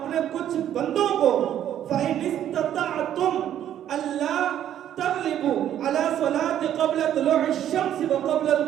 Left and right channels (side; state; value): left; quieter; 10.8 dB